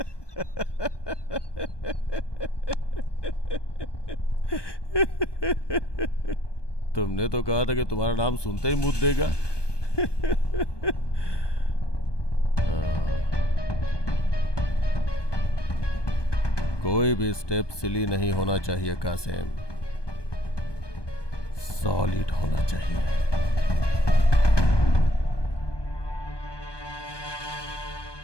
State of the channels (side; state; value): right; late; 1.2 ms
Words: तुमने तो कहा था कि तुम्हारा नाम सुनते ही मुद्द देगा। कोई भी स्टेप सिली नहीं होना चाहिए कासिम, सॉलिड होना चाहिए।